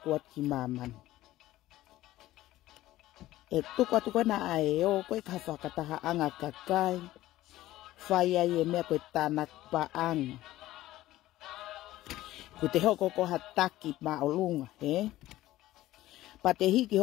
at ki maman. E tuku atu koe na ae o koe ka whakataha anga kakai. Whai ai e mea koe tanak pa anga. Ko te hoko ko ha TAKI ma o lunga, he? Pa te hiki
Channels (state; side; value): quieter; right; 15.6 dB